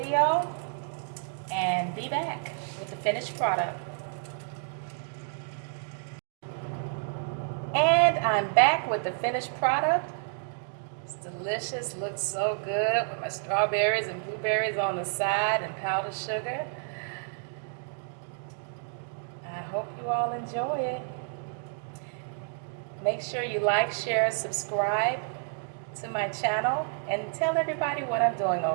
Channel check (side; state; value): left; silent; 58 dB below the other